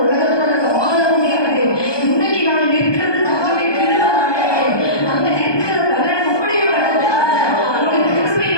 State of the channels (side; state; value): right; late; 1.2 ms